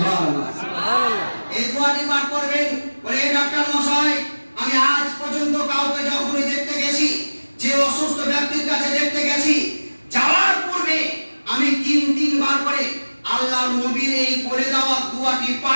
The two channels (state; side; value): inverted; both; correlation -1.00